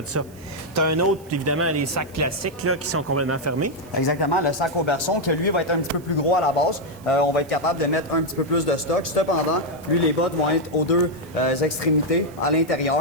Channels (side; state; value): right; noise; hiss, 25 dB below the sound